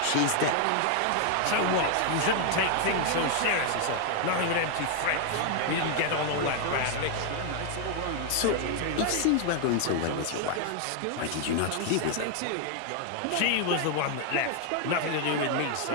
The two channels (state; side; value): different; both; correlation 0.00